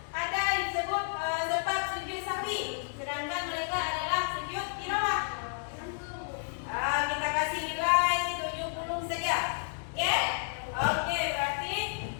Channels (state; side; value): silent; right; digital silence